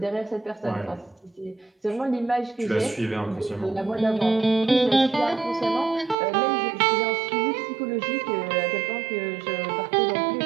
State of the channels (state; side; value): drops out; left; at 6.2 s